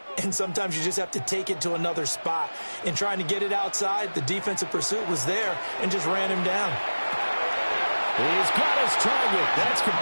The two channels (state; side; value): inverted; both; correlation -1.00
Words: and sometimes you just have to take it to another spot. In trying to get it outside, the defensive pursuit was there and just ran him down. He's got his target. That's